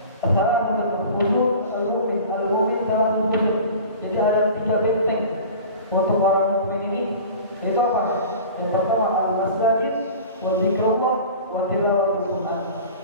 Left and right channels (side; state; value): both; inverted; correlation -0.39